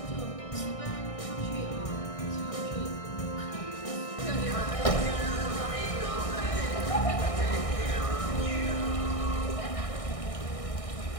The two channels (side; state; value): right; late; 1.6 ms